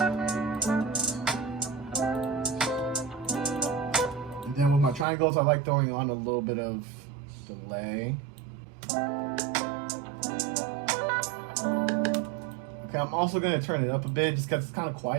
Triangles, I like throwing on a little bit of delay. Okay, I'm also going to turn it up a bit just because it's kind of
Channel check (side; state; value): left; drops out; at 5.1 s